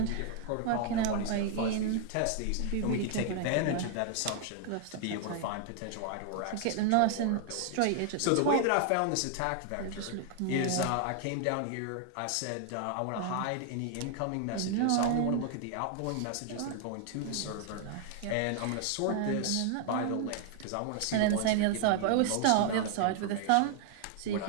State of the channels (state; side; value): different; both; correlation 0.00